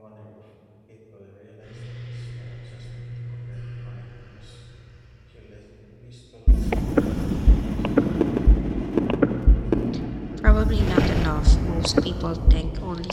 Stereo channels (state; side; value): identical; both; correlation 1.00